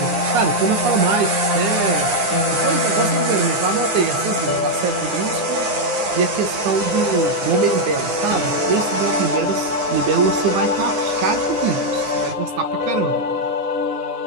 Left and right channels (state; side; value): late; left; 9.8 ms